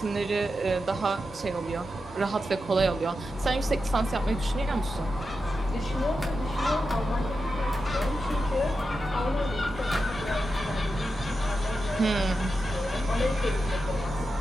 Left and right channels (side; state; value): both; normal; correlation 0.89